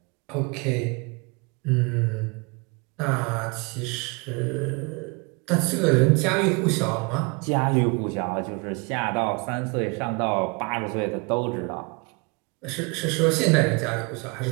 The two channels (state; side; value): quieter; left; 30.4 dB